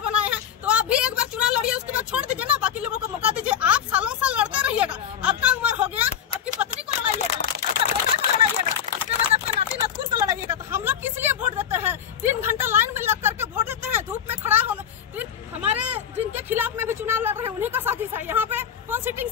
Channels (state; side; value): quieter; right; 9.0 dB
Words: बनाए हैं, तो आप भी एक बार चुनाव लड़िए, उसके बाद छोड़ दीजिए ना, बाकी लोगों को मौका दीजिए। आप सालों साल लड़ते रहिएगा, आपका उम्र हो गया, आपकी पत्नी को लड़ाइएगा, आपका बेटा को लड़ाइएगा, उसके बाद आपके नाती नतकुर को लड़ाइएगा। तो हम लोग किस लिए वोट देते हैं? 3 घंटा लाइन में लग करके वोट देते हैं, धूप में खड़ा होना। हमारे जिनके खिलाफ में भी चुनाव लड़ रहे हैं उन्हीं का साजिश है। यहाँ पे कौन सिटिंग